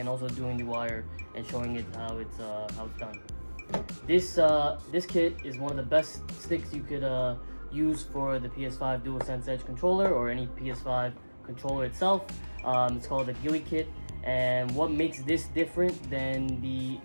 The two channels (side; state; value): both; inverted; correlation -1.00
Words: also doing the wire and showing it how it's done. This kit is one of the best sticks you could use for the PS5 DualSense Edge controller, or any PS5 controller itself. It's called the gulikit, and what makes this different than the